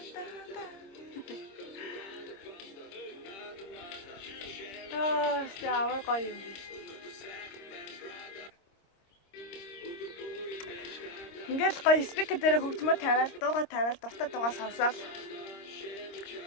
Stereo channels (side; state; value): right; late; 26 ms